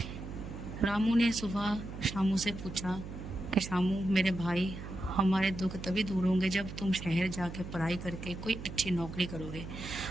रामू ने सुबह शामू से पूछा कि शामू मेरे भाई, हमारे दुख तभी दूर होंगे जब तुम शहर जाके पढ़ाई करके कोई अच्छी नौकरी करोगे।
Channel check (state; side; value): noise; right; hum, 9 dB below the sound